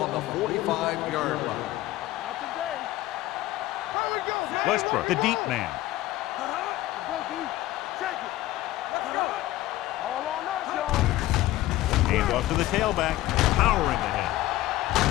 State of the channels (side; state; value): right; quieter; 16.3 dB